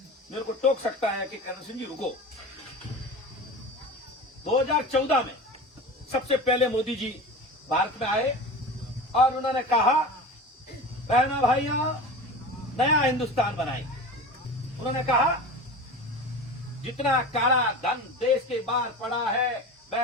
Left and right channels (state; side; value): normal; both; correlation 0.32